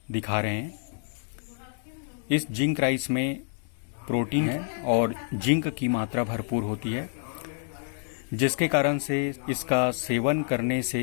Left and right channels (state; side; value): silent; right; digital silence